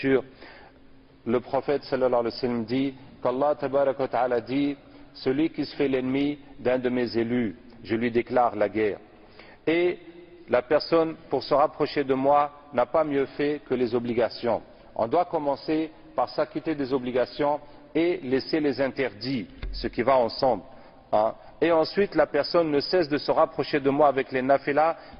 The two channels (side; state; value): both; identical; correlation 1.00